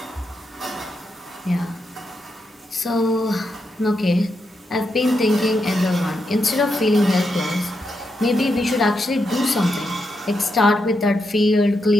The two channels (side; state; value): both; normal; correlation 0.83